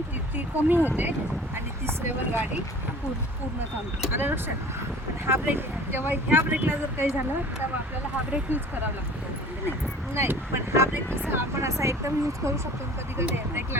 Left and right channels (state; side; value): normal; both; correlation 0.45